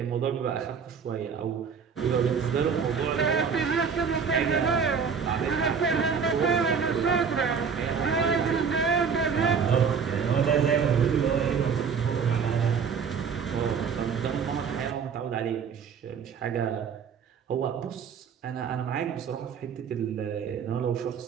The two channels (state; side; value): quieter; left; 6.3 dB